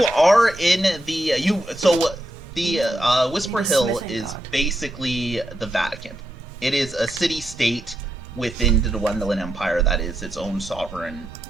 are in the Whisper Hill is basically the Vatican. It is a city-state within the Dwendalin Empire that is its own sovereign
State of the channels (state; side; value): normal; both; correlation 0.84